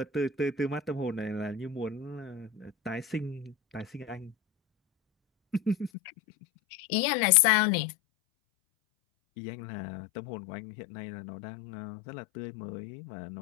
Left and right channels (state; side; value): drops out; right; at 5.9 s